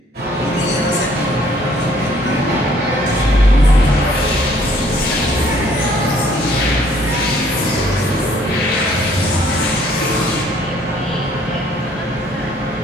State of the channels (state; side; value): normal; both; correlation 0.61